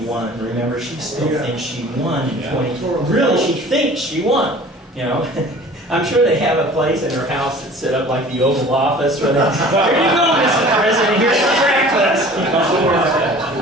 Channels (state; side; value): normal; both; correlation 0.45